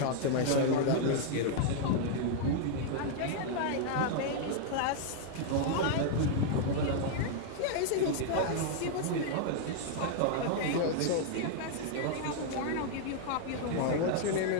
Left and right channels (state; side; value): different; both; correlation -0.01